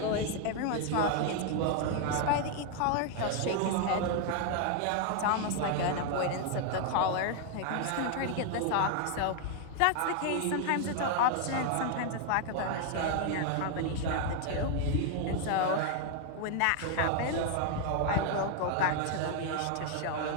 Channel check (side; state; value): both; different; correlation 0.00